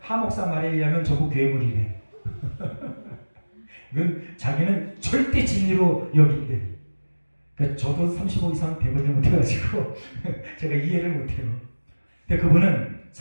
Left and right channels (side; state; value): both; inverted; correlation -1.00